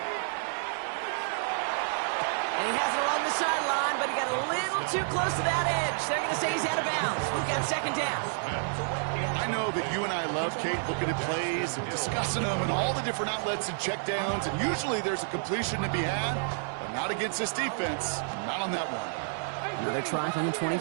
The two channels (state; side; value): silent; left; 58 dB below the other